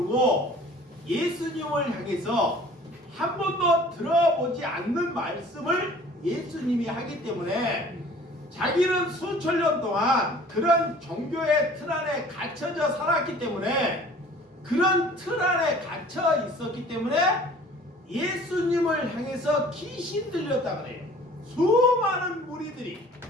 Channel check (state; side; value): normal; both; correlation 0.49